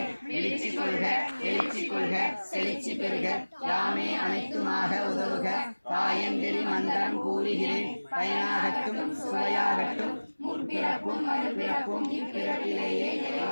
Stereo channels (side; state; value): both; inverted; correlation -1.00